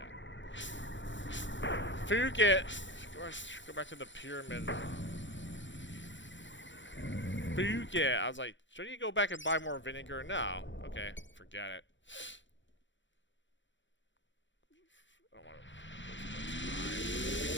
Fuke it. Go back to the pyramid. Fuke it. I was like, should you go back and buy more vinegar? No. Okay, forget it. I don't want to.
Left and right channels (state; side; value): late; right; 0.54 ms